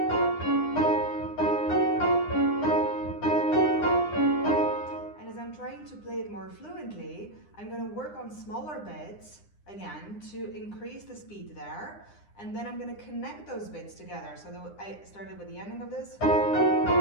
as I'm trying to play it more fluently, I'm going to work on smaller bits, again, to increase the speed there. And then I'm going to connect those bits together. So I started with the ending of this.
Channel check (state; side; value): late; right; 9.8 ms